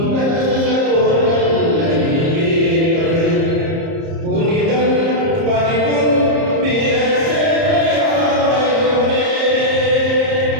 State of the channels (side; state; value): left; late; 30 ms